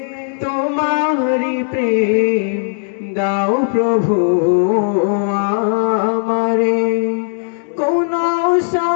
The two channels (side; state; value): right; silent; 68 dB below the other